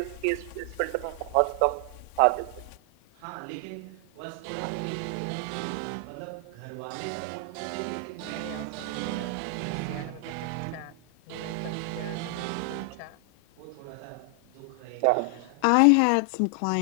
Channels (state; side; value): different; both; correlation 0.00